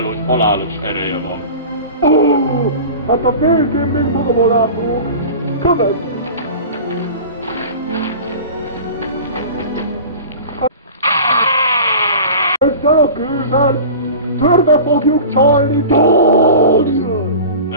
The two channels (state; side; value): inverted; both; correlation -0.36